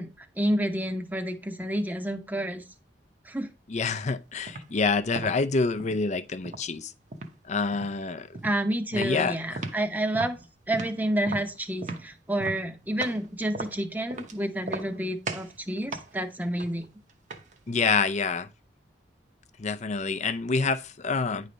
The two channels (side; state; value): both; normal; correlation 0.50